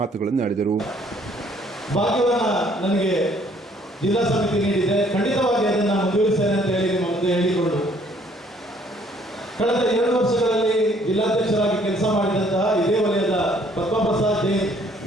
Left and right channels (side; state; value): both; normal; correlation 0.62